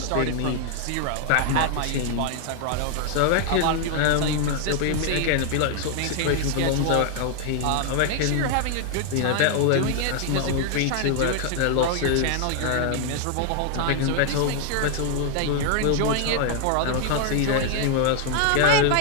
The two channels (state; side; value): different; both; correlation 0.00